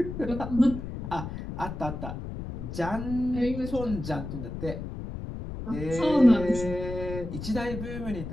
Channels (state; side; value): noise; left; rumble, 7 dB below the sound